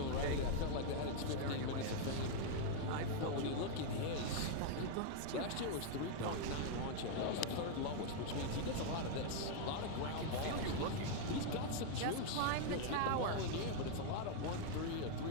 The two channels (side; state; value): both; different; correlation 0.00